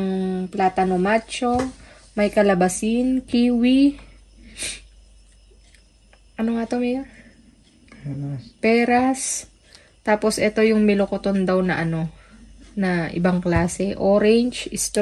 platano macho. May kalabasin, kiwi. Ano nga to, Mayor? Peras. Tapos, ito yung milokoton daw na na ibang klase. Orange,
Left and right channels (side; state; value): both; identical; correlation 1.00